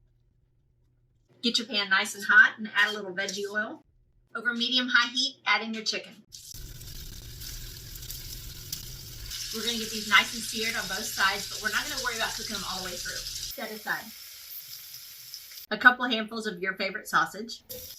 Get your pan nice and hot and add a little veggie oil. Over medium-high heat, add in your chicken. We're going to get these nice and seared on both sides, but we're not going to worry about cooking them all the way through. Set aside. A couple handfuls of your favorite sausage.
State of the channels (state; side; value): identical; both; correlation 1.00